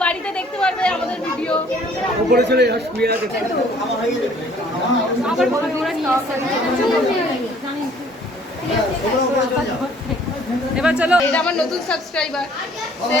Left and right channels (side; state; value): both; normal; correlation 0.57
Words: বাড়িতে দেখতে পারবে আমাদের ভিডিও। উপরে চলে যা শুয়ে আছে আবার ভাবি ওরা কি এবার চলো, এটা আমার নতুন সাবস্ক্রাইবার। সে